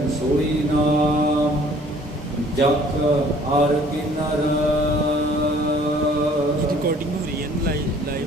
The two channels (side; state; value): both; normal; correlation 0.55